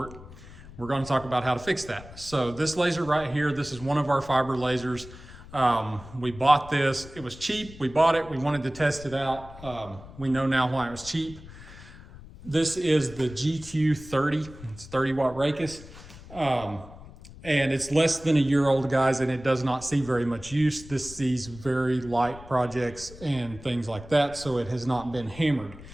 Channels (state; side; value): noise; left; rumble, 17 dB below the sound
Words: we're going to talk about how to fix that. So this laser right here, this is one of our fiber lasers. We bought this, it was cheap, we bought it, we wanted to test it out. We know now why it was cheap. This is the GQ30, it's 30 watt Raycus. And it's less than a year old, guys, and it does not see very much use. This sees very light projects and things like that, so it has not been hammered.